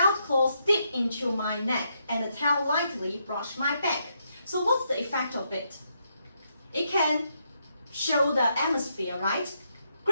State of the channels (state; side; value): inverted; both; correlation -0.78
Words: claws dig into my neck and the tail lightly brushed my back. So what's the effect of it? It can show the atmosphere, right?